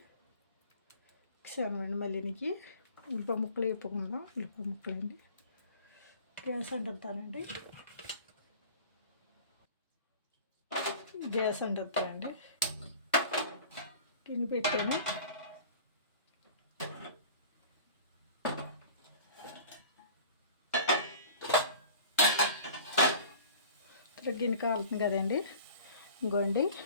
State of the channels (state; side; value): inverted; both; correlation -0.43